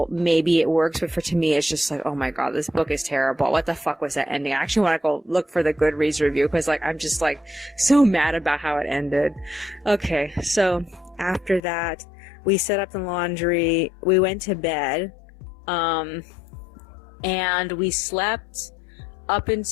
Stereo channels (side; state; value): right; drops out; at 11.6 s